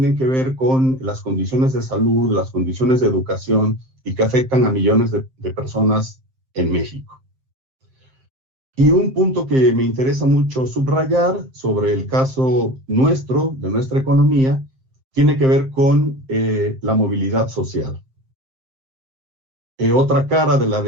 que ver con las condiciones de salud, las condiciones de educación, y que afectan a millones de personas en México. Y un punto que me interesa mucho subrayar sobre el caso nuestro, de nuestra economía, tiene que ver con la movilidad social. Otra cara de la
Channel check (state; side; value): late; left; 7.6 ms